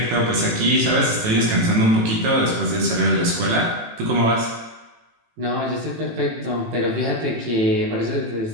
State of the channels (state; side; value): late; left; 18 ms